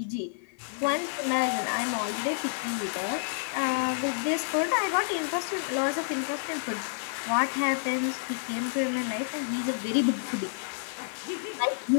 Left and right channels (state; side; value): silent; right; digital silence